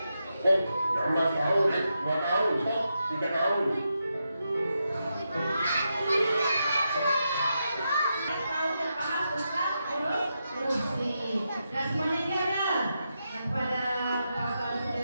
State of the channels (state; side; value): inverted; both; correlation -0.86